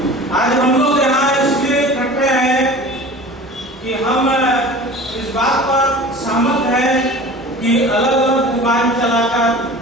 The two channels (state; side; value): normal; both; correlation 0.39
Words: आज हम लोग यहाँ इसलिए इकट्ठे हैं कि हम इस बात पर सहमत हैं कि अलग अलग दुकान चलाकर